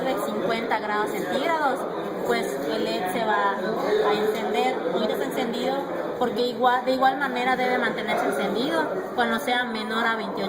de 50 grados centígrados, pues el LED se va a encender. Ahorita está encendido porque de igual manera debe mantenerse encendido cuando sea menor a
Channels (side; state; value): both; identical; correlation 1.00